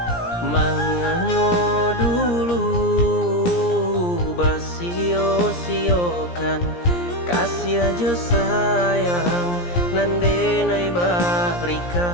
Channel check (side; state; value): right; late; 17 ms